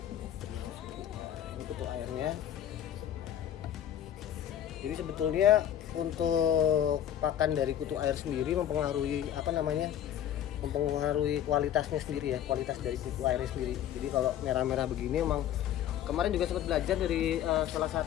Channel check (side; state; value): right; quieter; 10.6 dB